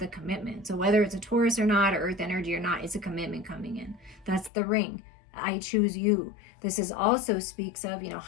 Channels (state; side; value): drops out; right; at 4.5 s